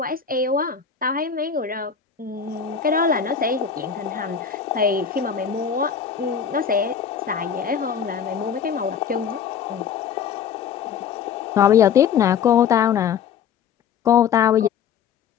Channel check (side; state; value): right; quieter; 7.4 dB